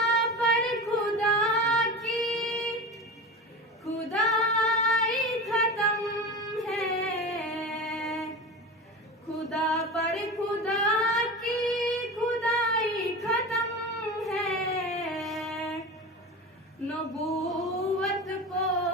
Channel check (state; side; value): normal; both; correlation 0.28